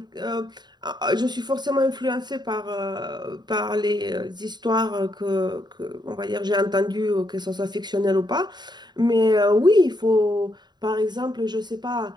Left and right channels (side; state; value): left; late; 0.21 ms